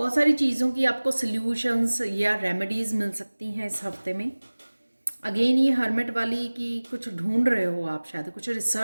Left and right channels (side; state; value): both; inverted; correlation -1.00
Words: सारी चीज़ों की आपको सल्यूशंस या रेमेडीज़ मिल सकती हैं इस हफ्ते में। अगेन ये हर्मिट वाली कि कुछ ढूंढ रहे हो आप, शायद कुछ